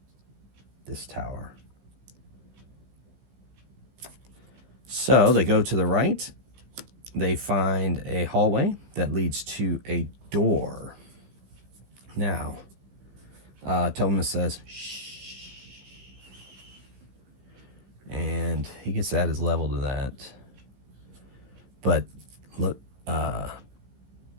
this tower? So they go to the right. They find a hallway that leads to a door. Now, Thomas says, "Shh." And he gets at his level to that. But look,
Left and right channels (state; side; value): late; left; 15 ms